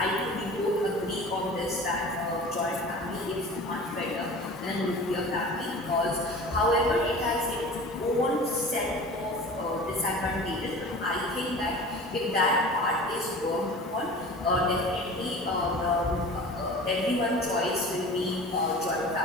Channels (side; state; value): both; normal; correlation 0.39